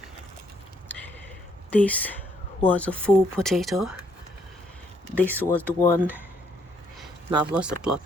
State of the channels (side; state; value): both; normal; correlation 0.70